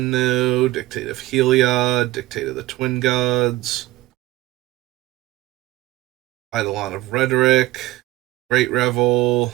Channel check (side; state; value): left; quieter; 17.5 dB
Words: no. Dictate of Heliod, Dictate of the Twin Gods. Eidolon of Rhetoric, Great Revel.